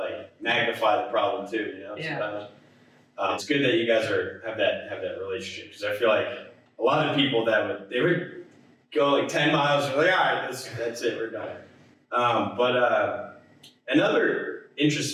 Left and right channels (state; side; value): identical; both; correlation 1.00